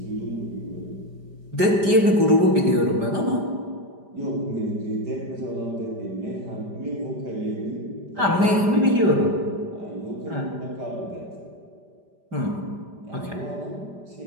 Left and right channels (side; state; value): left; late; 5.0 ms